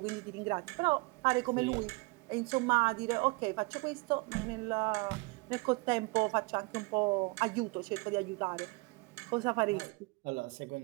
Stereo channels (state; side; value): quieter; left; 27.0 dB